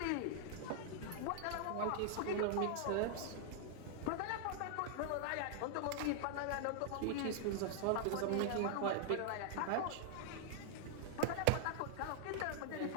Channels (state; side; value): different; both; correlation -0.01